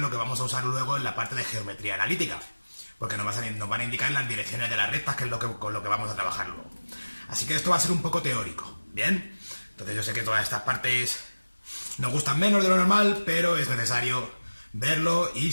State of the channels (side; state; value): both; inverted; correlation -1.00